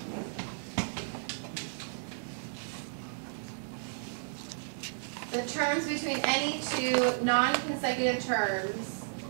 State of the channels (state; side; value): silent; left; digital silence